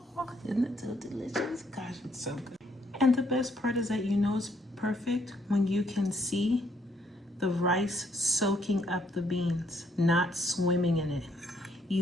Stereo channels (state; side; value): normal; both; correlation 0.70